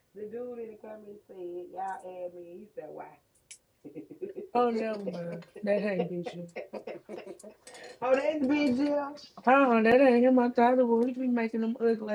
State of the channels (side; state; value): both; identical; correlation 1.00